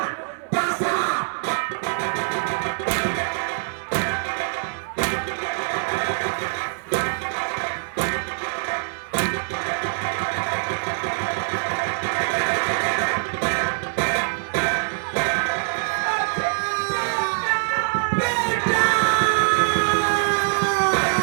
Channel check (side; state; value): left; silent; digital silence